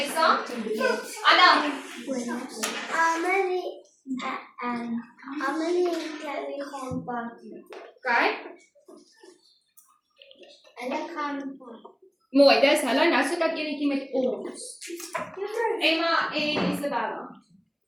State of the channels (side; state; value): both; identical; correlation 1.00